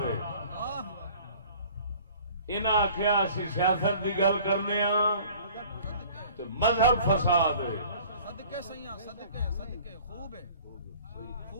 ہے، انہاں آخیا اسی سیاست دی گل کرنے ہاں تے مذہب فساد ہے۔ صدقے سیاں صدقے صدقے خوب ہے،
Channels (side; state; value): both; inverted; correlation -0.48